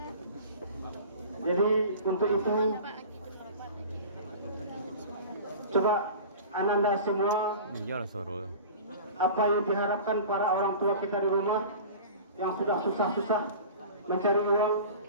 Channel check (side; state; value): both; inverted; correlation -0.37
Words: Jadi untuk itu, coba Ananda semua, apa yang diharapkan para orang tua kita di rumah yang sudah susah-susah mencari uang,